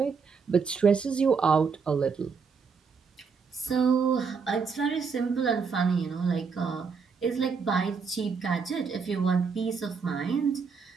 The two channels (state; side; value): quieter; left; 5.4 dB